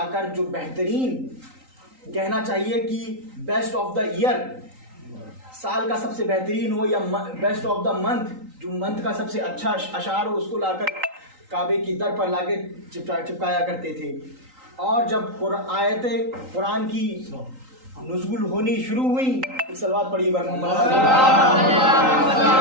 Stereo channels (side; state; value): left; late; 3.9 ms